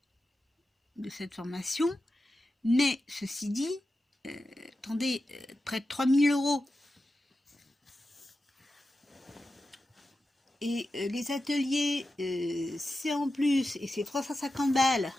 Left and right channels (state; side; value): normal; both; correlation 0.91